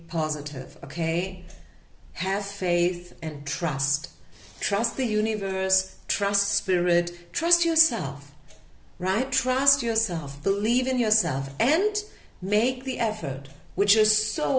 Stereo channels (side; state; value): both; identical; correlation 1.00